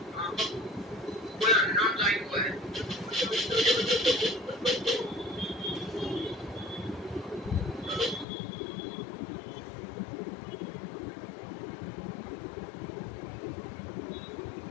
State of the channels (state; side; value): drops out; right; at 8.2 s